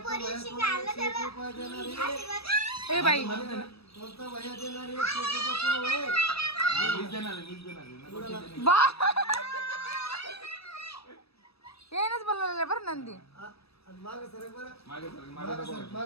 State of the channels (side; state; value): right; late; 0.78 ms